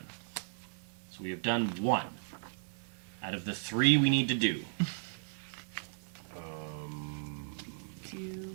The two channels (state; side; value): silent; left; digital silence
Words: So we have done 1 out of the 3 we need to do.